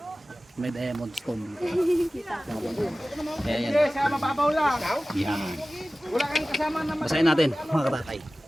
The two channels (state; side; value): normal; both; correlation 0.96